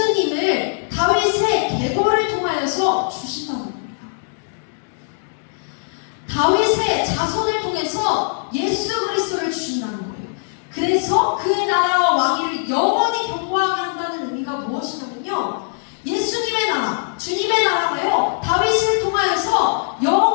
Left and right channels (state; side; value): silent; right; digital silence